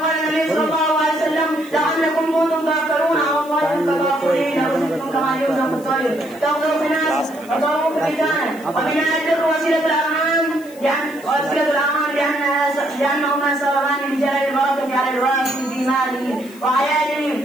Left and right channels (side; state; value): left; noise; hiss, 22 dB below the sound